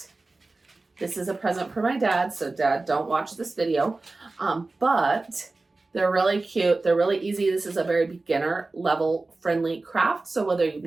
This is a present for my dad, so Dad, don't watch this video. But they're really cute. They're really easy. This is a very beginner level friendly craft. So whether you've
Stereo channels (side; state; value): left; quieter; 3.4 dB